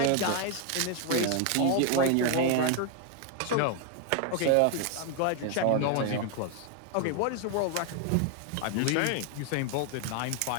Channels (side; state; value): both; different; correlation 0.00